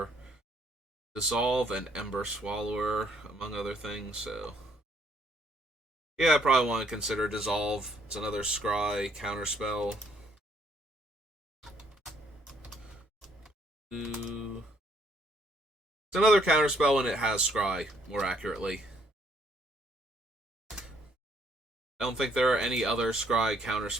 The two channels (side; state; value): both; normal; correlation 0.67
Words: Dissolve and Ember Swallower, among other things, so... Yeah, I probably want to consider Dissolve. It's another Scry counterspell. It's another counterspell and it has Scry, more accurately. I don't think there are any other Scry